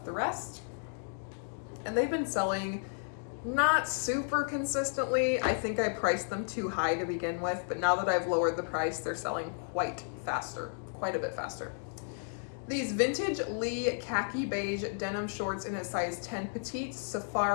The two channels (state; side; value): silent; right; digital silence